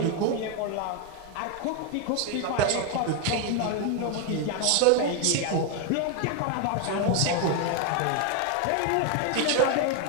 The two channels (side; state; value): both; different; correlation 0.01